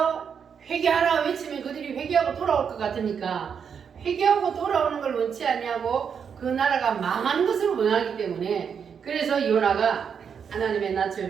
회개하라 외치면 그들이 회개하고 돌아올 것 같으니까 회개하고 돌아오는 걸 원치 않냐고 그 나라가 망하는 것을 원하기 때문에 그래서 요나가 하나님의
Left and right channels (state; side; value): quieter; left; 7.0 dB